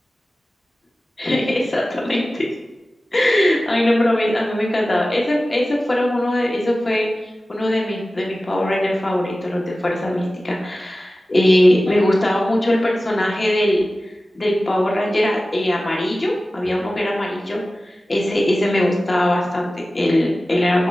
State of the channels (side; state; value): both; normal; correlation 0.96